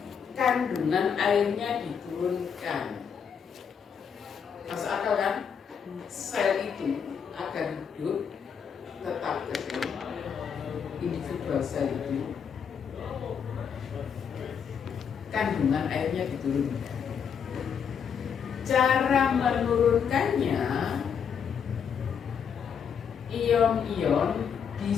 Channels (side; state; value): right; quieter; 7.2 dB